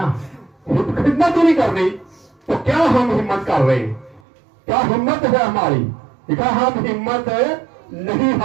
खिदमत ही नहीं करनी तो क्या हम हिम्मत कर रहे हैं? क्या हिम्मत है हमारी? देखा, हम हिम्मत नहीं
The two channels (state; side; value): drops out; left; at 4.2 s